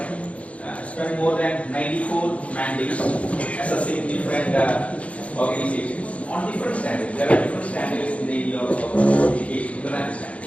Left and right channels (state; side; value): late; right; 0.064 ms